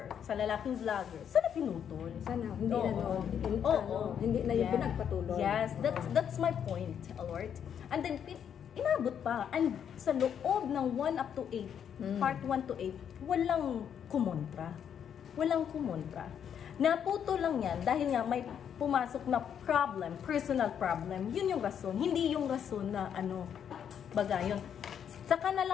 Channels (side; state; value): right; quieter; 8.5 dB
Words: sa lalaking vlogger, sana pinutol. Sana, hindi hindi na yung pinagpatuloy. Yes, that's my point, alright? And then, inabot pa. And sa loob ng 1 up to 8, part 1 to 8, walang kumontra. Naputo lang yan dahil nga may pumasok na problem, personal problem. Yun yung rason. Hindi yung rason na baga yun. Saka na